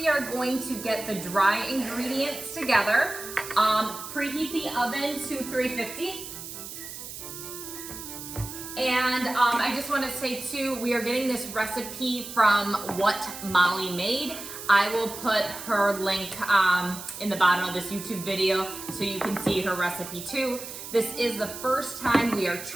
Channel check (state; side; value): noise; right; hiss, 10 dB below the sound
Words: are going to get the dry ingredients together. Preheat the oven to 350. And I just want to say too, we are getting this recipe from What Molly Made. I will put her link in the bottom of this YouTube video so you can see her recipe too. This is the first time we are